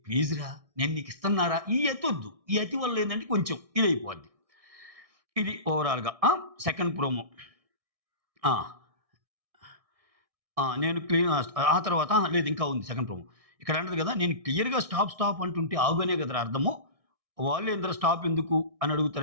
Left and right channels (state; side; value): late; left; 1.6 ms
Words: ప్లీజ్ రా! నేను నీకు ఇస్తన్నారా? ఈ అతొద్దు. ఈ అతి వల్ల ఏందంటే కొంచెం ఇదైపోద్ది. ఇది ఓవరాల్‌గా. Second promo. ఆ! నేను ఆ తర్వాత లేదు ఇంకా ఉంది సెకండ్ ప్రోమో. ఇక్కడ అంటది కదా! నేను క్లియర్‌గా స్టాప్, స్టాప్ అంటుంటే ఆగు అనే కదరా అర్థము. వాళ్ళేందిరా స్టాప్ ఎందుకు అని